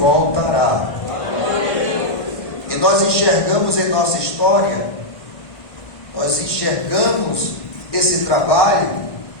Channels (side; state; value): right; late; 1.5 ms